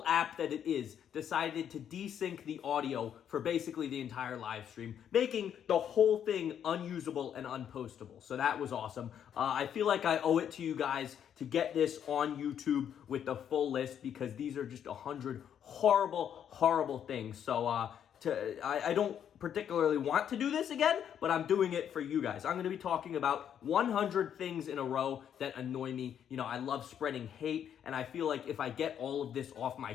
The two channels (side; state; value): right; quieter; 9.1 dB